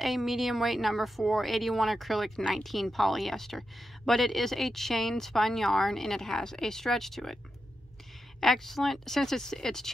a medium weight number 4, 81 acrylic, 19 polyester, but it is a chain spun yarn and it has a stretch to it. Excellent, since it's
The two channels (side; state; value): both; normal; correlation 0.87